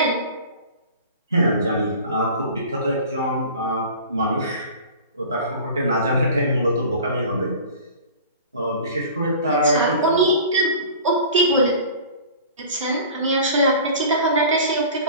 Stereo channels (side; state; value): both; inverted; correlation -0.40